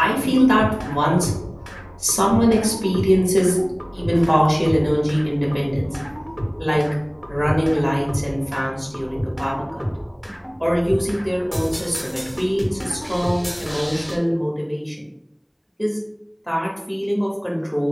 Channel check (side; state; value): both; identical; correlation 1.00